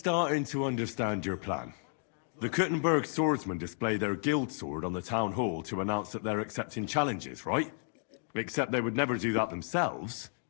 to understand your plan. The Kuttenberg swordsmen display their guild sword on the town hall to announce that they're accepting challenges, right? Except they would never do that themselves.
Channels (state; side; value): silent; right; 56 dB below the other